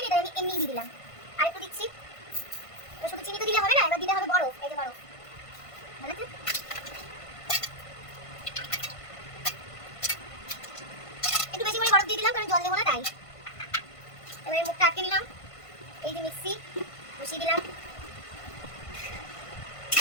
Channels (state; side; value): late; right; 1.5 ms